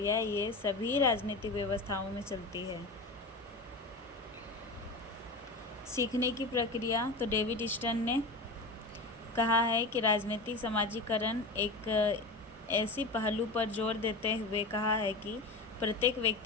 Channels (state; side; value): quieter; right; 3.2 dB